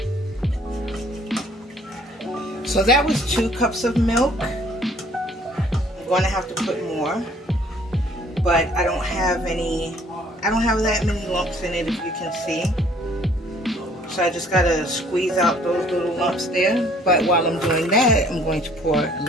So that was 2 cups of milk. I'm going to have to put more. but I don't have that many lumps in it, if you can see. So I just gotta squeeze out those little lumps there. But while I'm doing that, I'm going to pour a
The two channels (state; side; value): normal; both; correlation 0.59